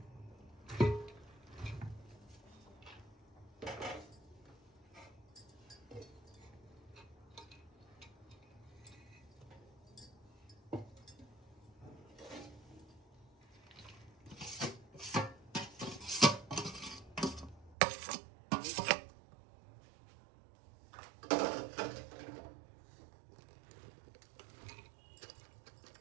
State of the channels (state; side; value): drops out; left; at 17.8 s